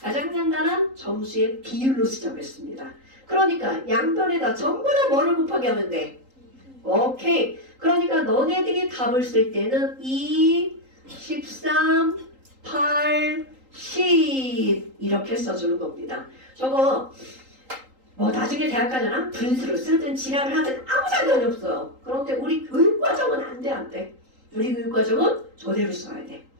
간단한 점수의 비율로 쓰자고 했습니다. 그러니까 양변에다 전부 다 뭐를 곱하게 하면 돼? 오케이. 그러니까 너네들이 답을 쓸 때는 2, 13, 8, 10 이렇게 써주는 겁니다. 저거 뭐 나중에 대학 가잖아? 분수로 쓰든 지랄을 하든 아무 상관이 없어요. 그런데 우리 교육과정은 안 돼. 우리 교육과정은 저대로 써야 돼.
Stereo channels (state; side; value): late; left; 3.8 ms